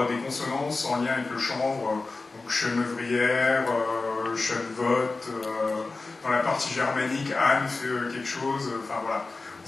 des consonances en lien avec le chanvre, donc Chenevrières, Chenevotte, dans la partie germanique, Anne fait quelque chose, enfin voilà,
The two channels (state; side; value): quieter; right; 3.6 dB